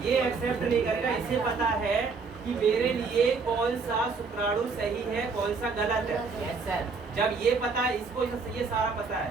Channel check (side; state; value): left; quieter; 4.7 dB